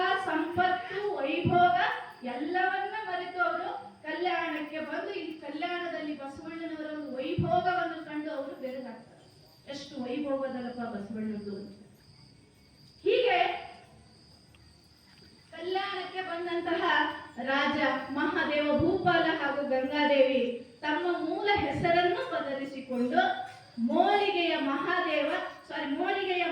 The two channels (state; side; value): identical; both; correlation 1.00